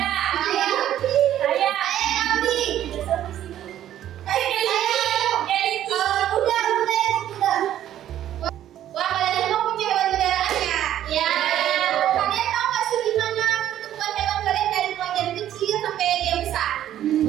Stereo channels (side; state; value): left; quieter; 11.7 dB